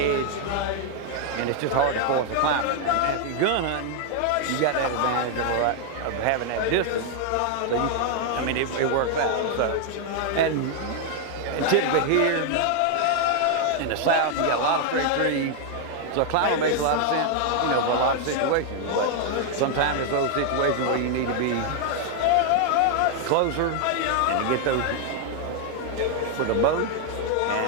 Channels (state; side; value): different; both; correlation 0.00